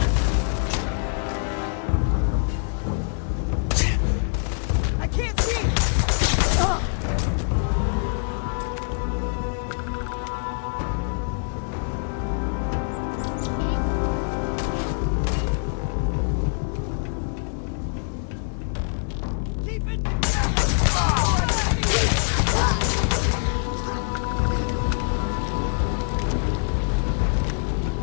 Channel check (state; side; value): silent; right; digital silence